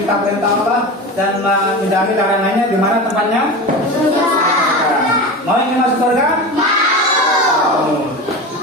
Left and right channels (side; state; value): both; normal; correlation 0.27